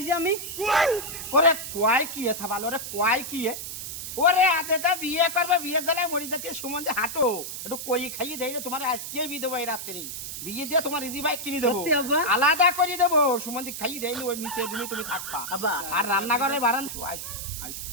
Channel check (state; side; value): noise; right; hiss, 7 dB below the sound